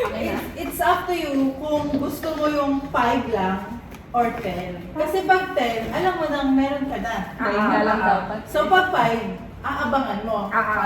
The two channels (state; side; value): identical; both; correlation 1.00